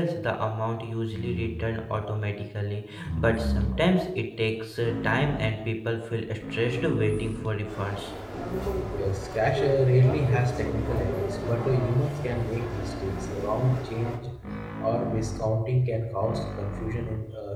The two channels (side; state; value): both; identical; correlation 1.00